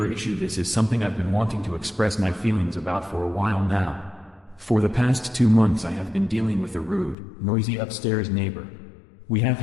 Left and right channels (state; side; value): drops out; right; at 7.2 s